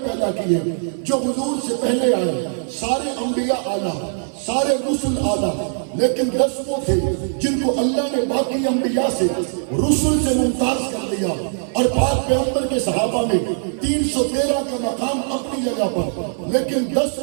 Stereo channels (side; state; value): left; silent; 55 dB below the other